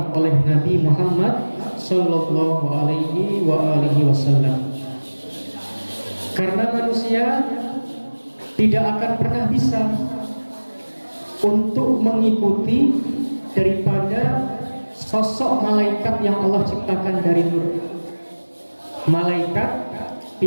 oleh Nabi Muhammad sallallahu alaihi wa alihi wasallam. Karena manusia tidak akan pernah bisa untuk mengikuti daripada sosok malaikat yang Allah ciptakan dari nur. Malaikat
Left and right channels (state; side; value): inverted; both; correlation -1.00